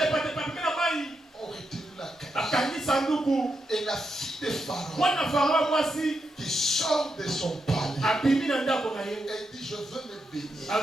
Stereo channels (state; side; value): normal; both; correlation 0.84